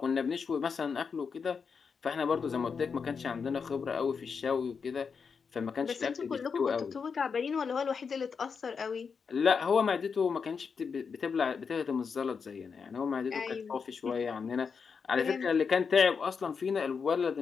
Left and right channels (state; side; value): quieter; right; 5.8 dB